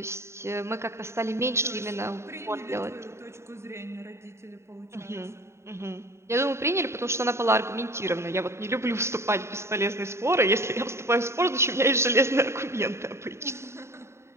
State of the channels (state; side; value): late; left; 0.13 ms